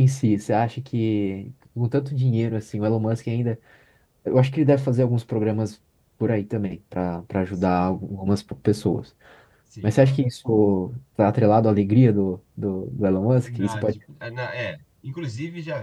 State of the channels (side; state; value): both; identical; correlation 1.00